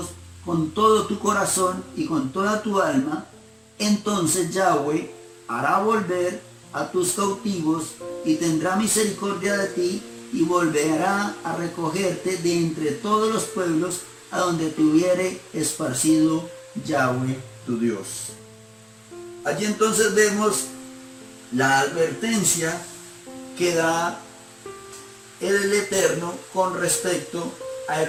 con todo tu corazón y con toda tu alma, entonces Yahweh hará volver a tus cautivos y tendrá misericordia de ti y volverá a recogerte de entre todos los pueblos a donde te hubiere esparcido Yahweh tu Dios. Allí entonces vemos la advertencia que da el Eterno con respecto a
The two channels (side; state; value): both; identical; correlation 1.00